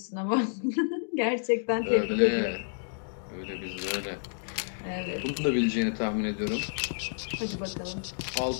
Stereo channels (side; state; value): right; silent; digital silence